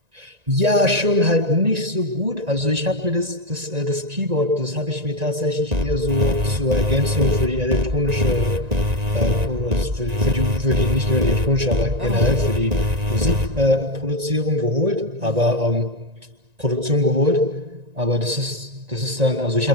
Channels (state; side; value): late; left; 1.9 ms